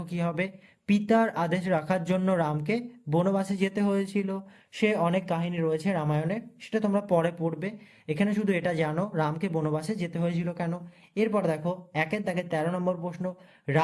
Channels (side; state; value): both; identical; correlation 1.00